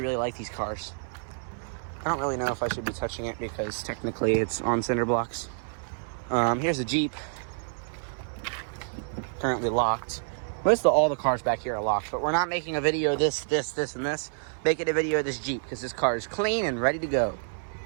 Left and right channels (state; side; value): silent; left; 59 dB below the other